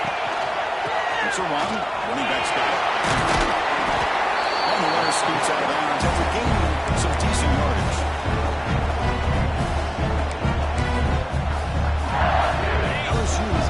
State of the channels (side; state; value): both; identical; correlation 1.00